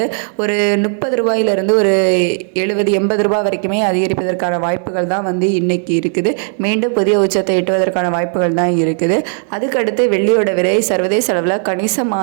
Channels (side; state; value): left; silent; 56 dB below the other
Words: ஒரு 30 ரூபாயிலிருந்து ஒரு 70-80 ரூபாய் வரைக்குமே அதிகரிப்பதற்கான வாய்ப்புகள் தான் இன்னைக்கு இருக்குது. மீண்டும் புதிய உச்சத்தை எட்டுவதற்கான வாய்ப்புகள் தான் இருக்குது. அதுக்கடுத்து வெள்ளியோட விலை சர்வதேச அளவில்